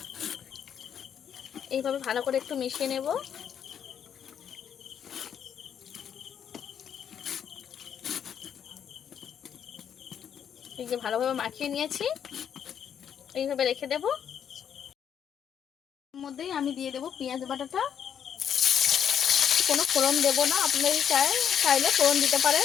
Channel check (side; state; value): right; quieter; 8.6 dB